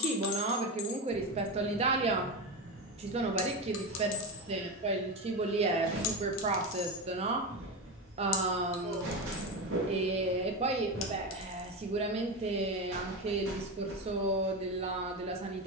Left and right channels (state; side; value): normal; both; correlation 0.18